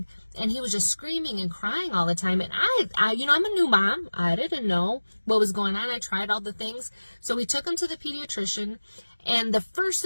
And he was just screaming and crying all the time. And I I'm a new mom. I didn't know what was going on. I tried all the things. So we took him to the pediatrician. And the first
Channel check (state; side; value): inverted; both; correlation -1.00